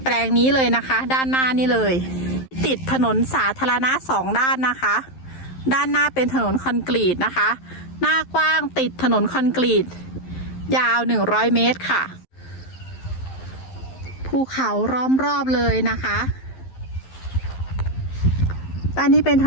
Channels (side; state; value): right; late; 11 ms